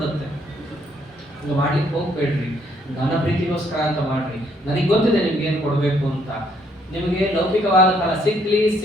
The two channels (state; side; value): normal; both; correlation 0.68